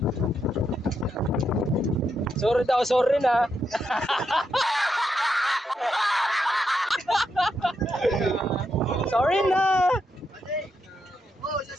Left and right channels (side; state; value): both; normal; correlation 0.82